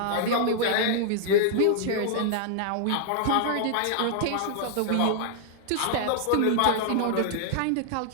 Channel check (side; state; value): both; different; correlation -0.01